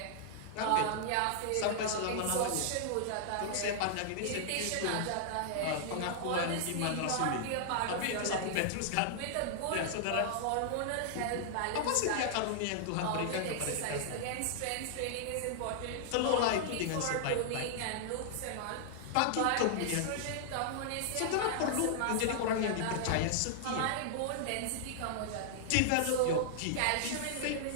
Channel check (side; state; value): both; different; correlation -0.01